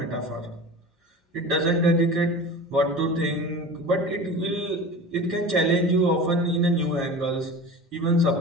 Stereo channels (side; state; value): both; normal; correlation 0.34